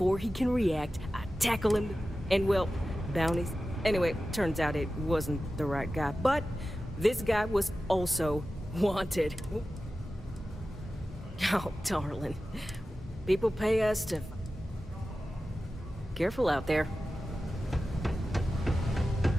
he can react, I tackle him. And, well, bounties... Anyway, turns out it wasn't the right guy. But this guy was also wanted. Oh, darling. People pay us to... Careful out there.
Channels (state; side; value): normal; both; correlation 0.94